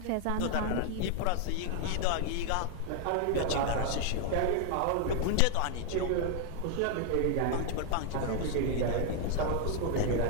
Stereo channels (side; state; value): both; different; correlation 0.00